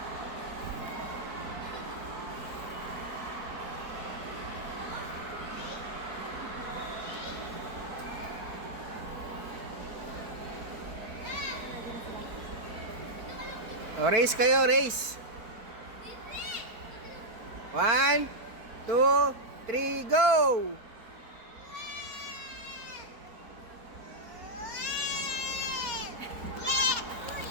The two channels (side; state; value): left; late; 4.4 ms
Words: O, race kayo, race. 1, 2, 3, go!